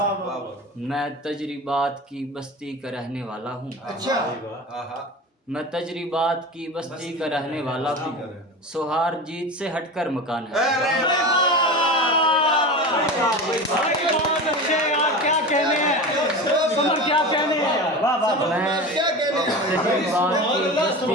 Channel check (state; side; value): normal; both; correlation 0.29